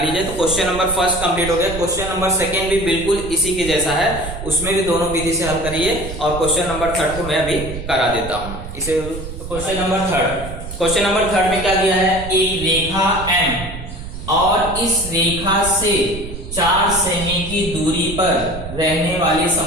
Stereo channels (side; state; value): right; noise; rumble, 10 dB below the sound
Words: तो क्वेश्चन नंबर 1 कंप्लीट हो गया। क्वेश्चन नंबर 2 भी बिल्कुल इसी के जैसा है, उसमें भी दोनों विधि से हल करिए और क्वेश्चन नंबर 3 को मैं अभी करा देता हूं इसे। क्वेश्चन नंबर 3 में क्या दिया है, एक रेखा M और इस रेखा से 4 सेमी की दूरी पर रहने वाली